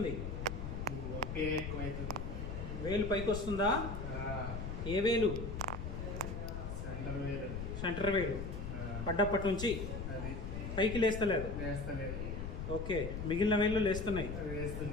వేలు పైకి వస్తుందా? ఏ వేలు? సెంటర్ వేలు. పడ్డప్పటి నుంచి పైకి లేస్తలేదు. ఓకే, మిగిలిన వేళ్ళు లేస్తున్నాయి.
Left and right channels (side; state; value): left; noise; rumble, 5 dB below the sound